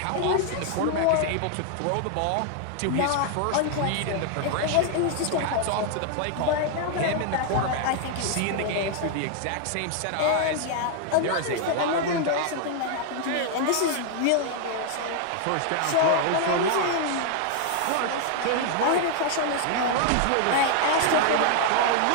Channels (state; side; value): different; both; correlation 0.00